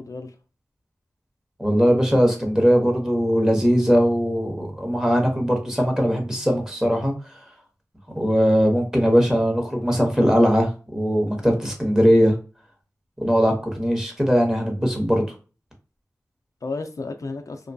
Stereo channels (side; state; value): both; normal; correlation 0.97